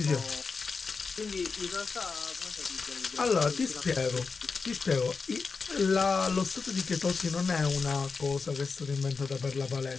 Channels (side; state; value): right; quieter; 4.8 dB